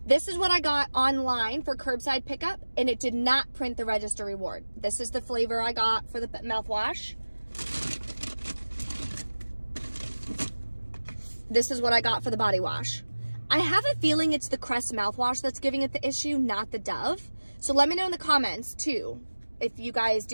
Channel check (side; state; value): both; inverted; correlation -1.00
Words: This is what I got online for curbside pickup, and it did not print the register reward. This is the flavor I got for the mouthwash. This is what I got for the body wash. I have a feeling it's the Crest mouthwash that's giving it the issue, not the Dove. So let me know in the comments too, if you guys